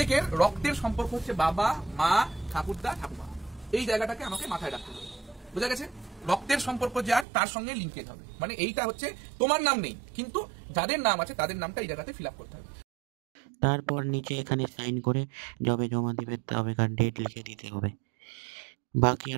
রক্তের সম্পর্ক হচ্ছে বাবা মা ঠাকুরদা ঠাকুমা, এই জায়গাটাকে আমাকে মাথায় রাখতে হবে। বোঝা গেছে? রক্তের সম্পর্ক যার তার সঙ্গে লিঙ্কেজ হবে, মানে এইটা হচ্ছে তোমার নাম নেই কিন্তু যাদের নাম আছে তাদের নামটা এই জায়গাতে ফিল আপ করতে হবে। তারপর নিচে এখানে সাইন করে যবে জমা দিবে তবেকার ডেট লিখে দিতে হবে। বাকি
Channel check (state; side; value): drops out; left; at 7.2 s